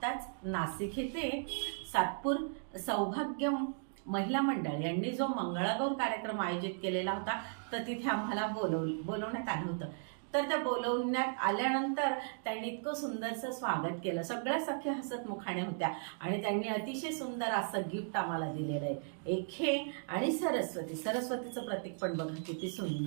नाशिक येथे सातपूर सौभाग्य महिला मंडळ यांनी जो मंगळागौर कार्यक्रम आयोजित केलेला होता, तर तिथे आम्हाला बोलवण्यात आलं होतं. तर त्या बोलवण्यात आल्यानंतर त्यांनी इतकं सुंदरचं स्वागत केलं. सगळ्या सख्या हसत मुखाने होत्या आणि त्यांनी अतिशय सुंदर असं गिफ्ट आम्हाला दिलेलं आहे. एक हे आणि सरस्वतीचं प्रतीक पण बघा किती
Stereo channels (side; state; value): left; silent; digital silence